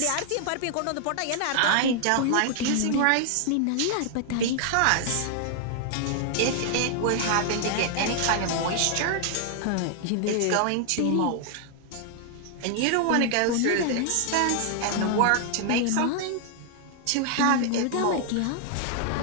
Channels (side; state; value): both; different; correlation 0.00